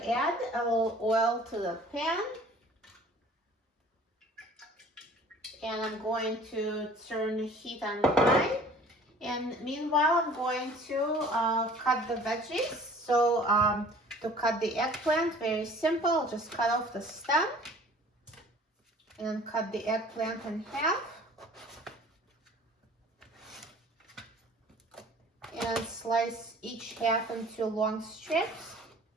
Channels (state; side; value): normal; both; correlation 0.50